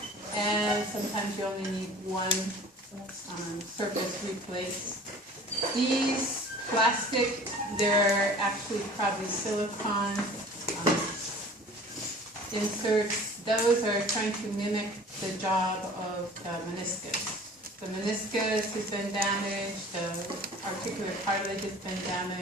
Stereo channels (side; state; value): both; normal; correlation 0.45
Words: and sometimes you only need one surface replaced. These plastic, they're actually probably silicone inserts. Those are trying to mimic the job of the meniscus. The meniscus has been damaged, the articular cartilage has been